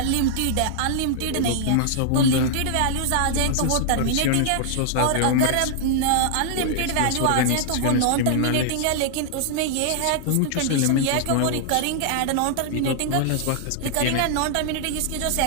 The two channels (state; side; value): different; both; correlation -0.01